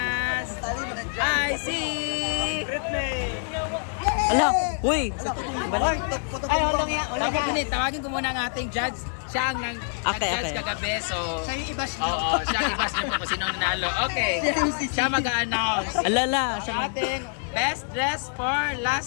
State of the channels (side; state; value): right; silent; digital silence